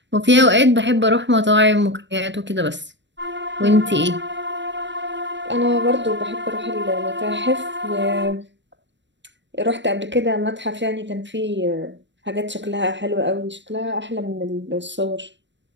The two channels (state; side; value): late; left; 0.53 ms